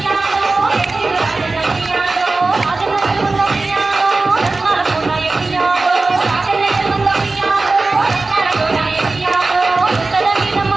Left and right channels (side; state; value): left; quieter; 3.5 dB